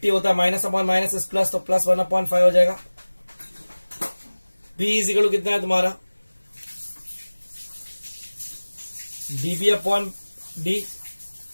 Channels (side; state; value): both; inverted; correlation -1.00